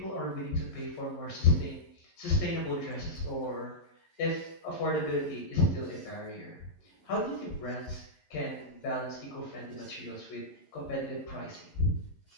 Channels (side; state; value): right; late; 11 ms